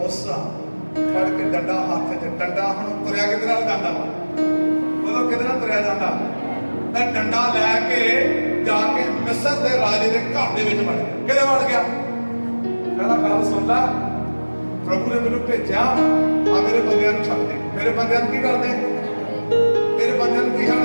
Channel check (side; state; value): both; inverted; correlation -1.00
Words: ਫੜ ਕੇ ਡੰਡਾ ਹੱਥ 'ਚ, ਡੰਡਾ ਹੁਣ ਤੁਰਿਆ ਕਿਹਦੇ ਨਾਲ ਜਾਂਦਾ ਵਾ? ਉਦੋਂ ਕਿਹਦੇ ਨਾਲ ਤੁਰਿਆ ਜਾਂਦਾ? ਤਾਂ ਡੰਡਾ ਲੈ ਕੇ ਜਾ ਕੇ ਮਿਸਰ ਦੇ ਰਾਜੇ ਦੇ ਘਰ ਦੇ ਵਿੱਚ ਵੜ ਗਿਆ। ਕਿਹਦੇ ਵੜ ਗਿਆ? ਕਹਿੰਦਾ ਗੱਲ ਸੁਣ ਲੈ, ਪ੍ਰਭੂ ਨੇ ਮੈਨੂੰ ਭੇਜਿਆ, ਆ ਮੇਰੇ ਬੰਦਿਆਂ ਨੂੰ ਛੱਡ ਦੇ। ਮੇਰੇ ਬੰਦਿਆਂ ਨੂੰ ਕੀ ਕਰਦੇ? ਮੇਰੇ ਬੰਦਿਆਂ ਨੂੰ ਕੀ